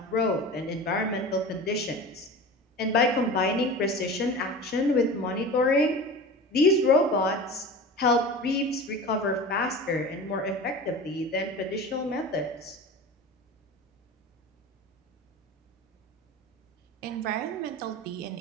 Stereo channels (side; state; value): both; normal; correlation 0.34